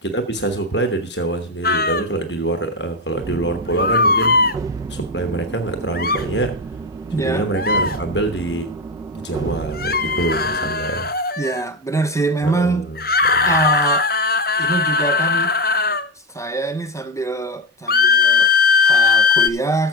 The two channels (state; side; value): normal; both; correlation 0.14